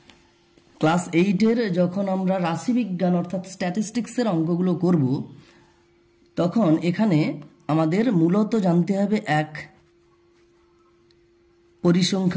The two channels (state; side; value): identical; both; correlation 1.00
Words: ক্লাস 8-এর যখন আমরা রাশিবিজ্ঞান অর্থাৎ স্ট্যাটিস্টিক্সের অঙ্কগুলো করব, তখন এখানে আমাদের মূলত জানতে হবে 1